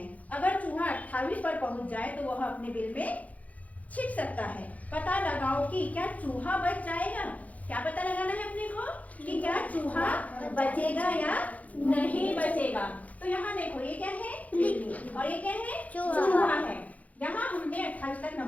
अगर चूहा 28 पर पहुंच जाए तो वह अपने बिल में छिप सकता है। पता लगाओ कि क्या चूहा बच जाएगा। क्या पता लगाना है अपने को कि क्या चूहा बचेगा या नहीं बचेगा। तो यहाँ देखो, ये क्या है, बिल्ली, और ये क्या है, चूहा है। यहाँ हमने 28 तक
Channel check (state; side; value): late; right; 0.071 ms